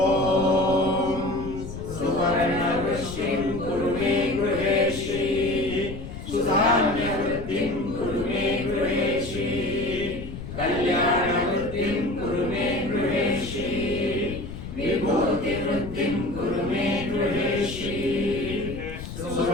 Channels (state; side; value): noise; left; rumble, 10 dB below the sound